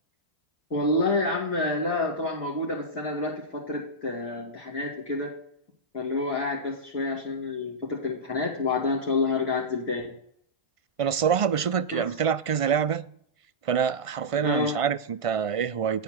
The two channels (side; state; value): left; late; 1.5 ms